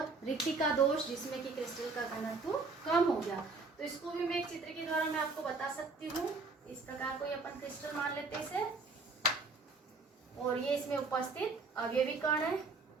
रिक्तिका दोष जिसमें कि क्रिस्टल का घनत्व कम हो गया। तो इसको भी मैं एक चित्र के द्वारा मैं आपको बता सकती हूँ। इस प्रकार को अपन क्रिस्टल मान लेते हैं इसे, और ये इसमें उपस्थित अवयवी कण है।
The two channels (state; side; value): quieter; left; 4.0 dB